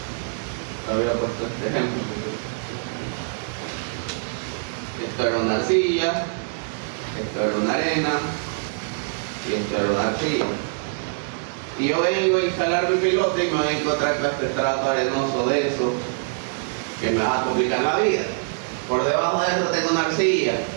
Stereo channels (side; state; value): left; silent; digital silence